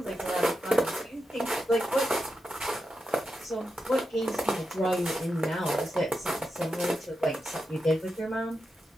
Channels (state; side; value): normal; both; correlation 0.88